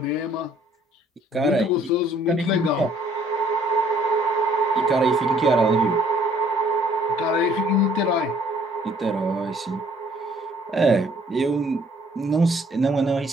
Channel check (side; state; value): both; normal; correlation 0.61